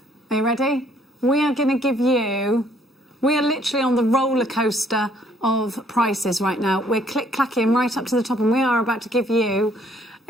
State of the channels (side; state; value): both; normal; correlation 0.64